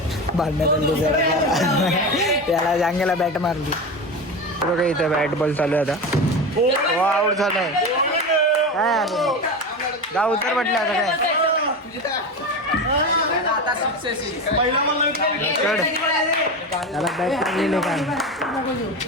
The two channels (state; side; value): normal; both; correlation 0.23